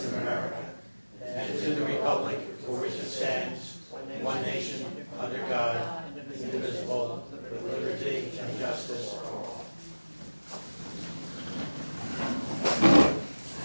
of America and to the republic for which it stands, one nation, under God, indivisible, with liberty and justice for all.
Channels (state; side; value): inverted; both; correlation -1.00